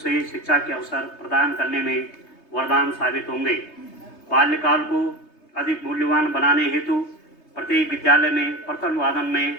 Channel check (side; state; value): right; late; 3.2 ms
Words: शिक्षा के अवसर प्रदान करने में वरदान साबित होंगे। बाल्यकाल को अधिक मूल्यवान बनाने हेतु प्रत्येक विद्यालय में प्रथम वादन में